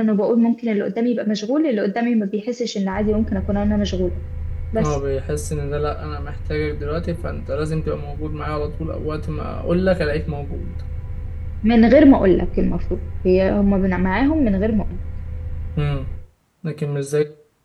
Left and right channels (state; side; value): identical; both; correlation 1.00